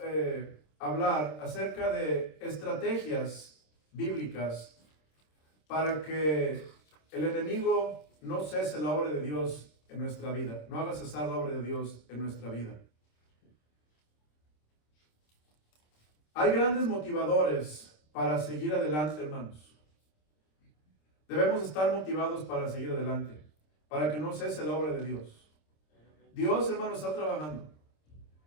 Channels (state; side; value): late; right; 26 ms